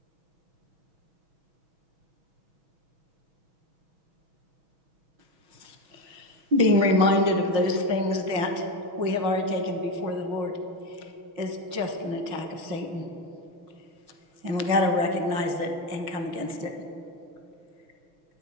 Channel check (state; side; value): late; left; 6.2 ms